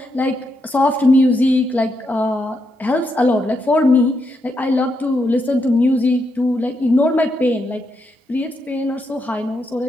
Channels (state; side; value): normal; both; correlation 0.81